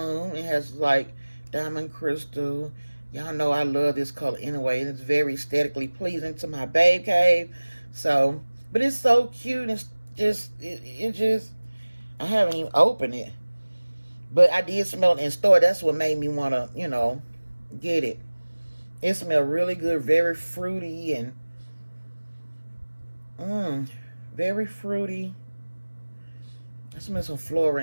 It has like diamond crystal. Y'all know I love this color anyway. It's very aesthetically pleasing to my babe cave. So, but it's so cute. It's just, I haven't even opened it. But I did smell it in store. That's what made me want to, you know, get it. It smells really good. Very fruity and very fruity. I smell some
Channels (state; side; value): inverted; both; correlation -1.00